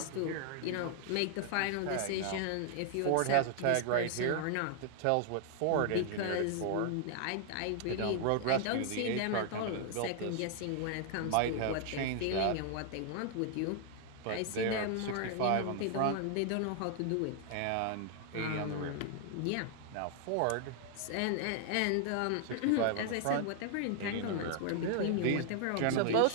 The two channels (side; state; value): both; different; correlation 0.00